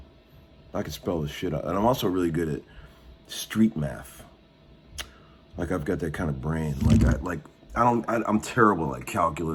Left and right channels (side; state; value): both; identical; correlation 1.00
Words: I can spell the shit out. And I'm also really good at street math. Like I've got that kind of brain. I'm terrible at